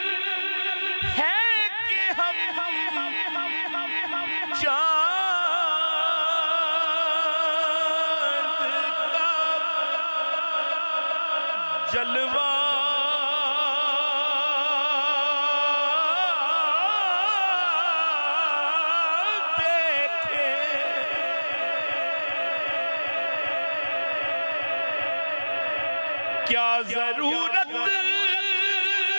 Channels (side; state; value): both; inverted; correlation -1.00